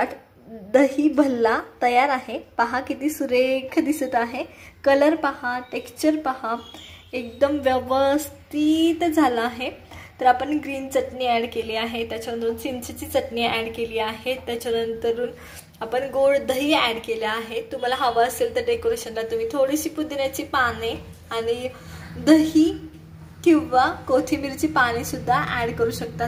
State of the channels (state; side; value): identical; both; correlation 1.00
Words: दही भल्ला तयार आहे। पहा किती सुरेख दिसत आहे। कलर पहा, टेक्स्चर पहा, एकदम व्यवस्थित झाला आहे। तर आपण ग्रीन चटणी ॲड केली आहे, त्याच्यानंतर चिंचेची चटणी ॲड केली आहे, त्याच्यानंतर आपण गोड दही ॲड केले आहे। तुम्हाला हवं असेल तर डेकोरेशनला तुम्ही थोडीशी पुदिन्याची पाने आणि दही किंवा कोथिंबीरची पाने सुद्धा ॲड करू शकता।